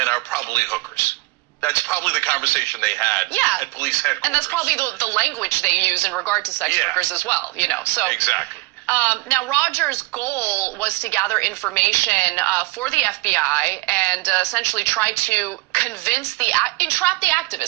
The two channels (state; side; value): quieter; left; 23.5 dB